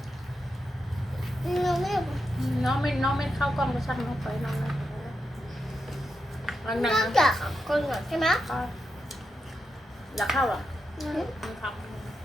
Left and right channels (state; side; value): normal; both; correlation 0.86